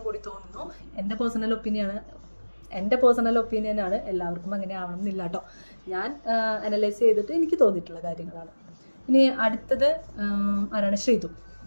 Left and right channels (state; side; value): inverted; both; correlation -1.00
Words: കൂടി തോന്നുന്നു. എൻ്റെ പേഴ്സണൽ ഒപ്പീനിയനാണ്. എല്ലാവർക്കും അങ്ങനെ ആവണം എന്നില്ല കേട്ടോ. ഞാൻ അനലൈസ് ചെയ്തിട്ട് എനിക്ക് തോന്നിയിട്ടുള്ള കാര്യങ്ങളാണ്. ഇനി അടുത്തത് ആരാണ്?